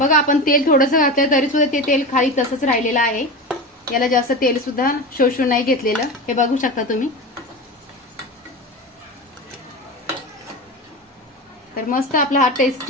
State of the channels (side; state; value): both; normal; correlation 0.25